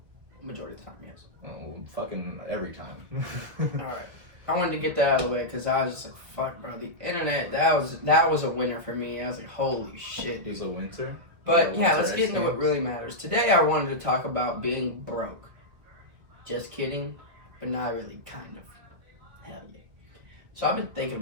Majority of the time, yes. Oh, fucking every time. Alright. I wanted to get that out of the way because I was just like, fuck, bro. The internet, that was a winner for me. I was like, holy shit. It was a winter? But yeah, let's get into what really matters. Today I wanted to talk about being broke. Just kidding, but not really, kind of. Hell yeah. So I've been thinking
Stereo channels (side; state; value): left; late; 1.9 ms